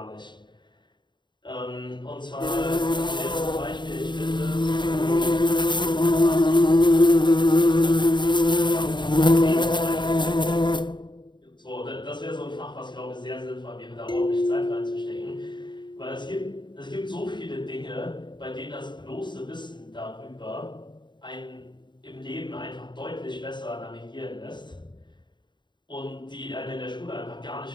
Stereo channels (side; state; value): right; late; 0.22 ms